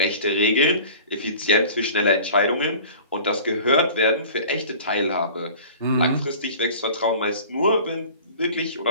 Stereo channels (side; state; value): both; inverted; correlation -0.43